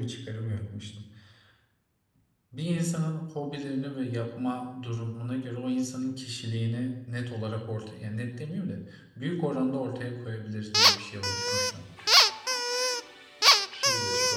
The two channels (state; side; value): identical; both; correlation 1.00